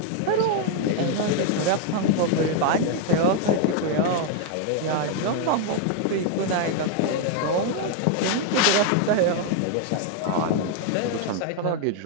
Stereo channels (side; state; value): both; different; correlation 0.00